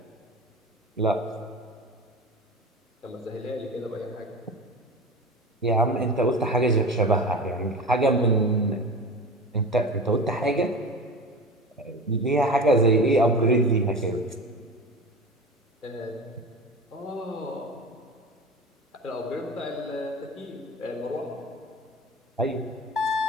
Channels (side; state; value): both; normal; correlation 0.31